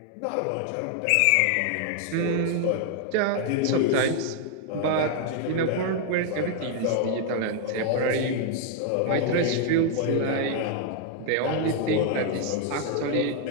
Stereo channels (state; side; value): different; both; correlation 0.00